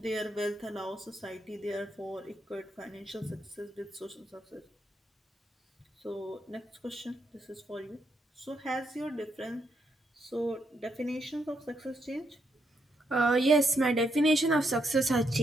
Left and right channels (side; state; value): both; normal; correlation 0.79